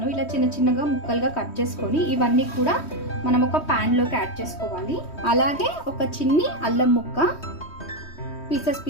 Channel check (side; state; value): right; late; 3.1 ms